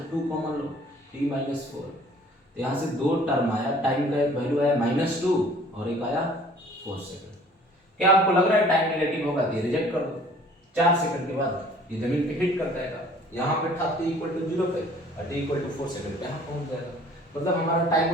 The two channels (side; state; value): both; normal; correlation 0.53